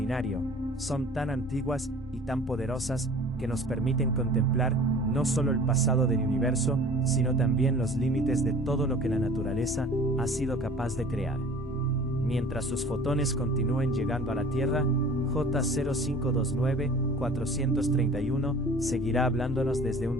son tan antiguas y tan poderosas que nos permiten contemplar no solo el pasado del universo, sino también los límites de todo lo que la naturaleza ha sido capaz de crear. Mientras sus fotones continúen llegando a la Tierra, J0529-431 seguirá hablándonos desde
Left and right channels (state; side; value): noise; left; hum, 21 dB below the sound